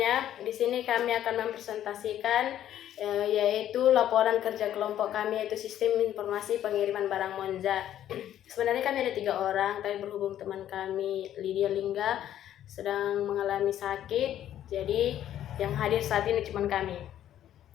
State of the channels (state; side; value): quieter; right; 11.4 dB